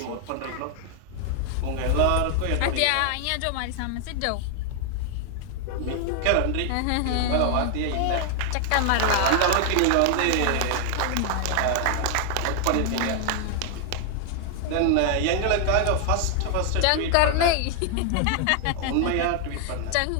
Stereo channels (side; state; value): both; different; correlation 0.00